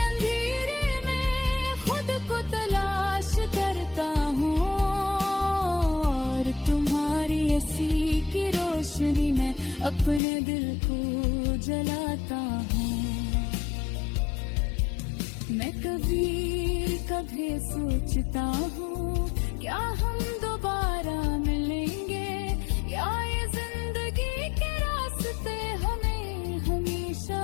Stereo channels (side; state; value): right; drops out; at 10.2 s